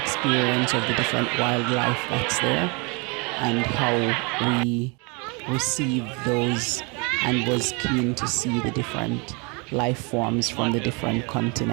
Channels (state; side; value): quieter; left; 30.8 dB